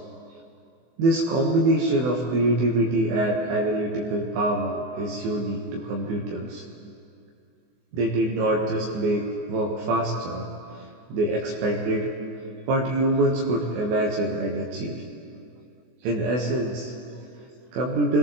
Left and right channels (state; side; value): late; left; 24 ms